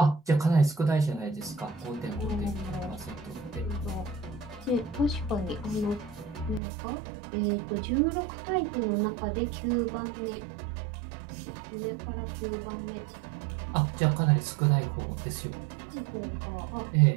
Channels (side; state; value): left; drops out; at 6.6 s